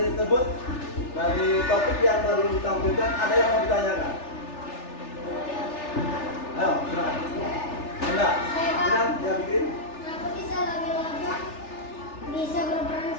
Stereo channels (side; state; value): right; late; 3.4 ms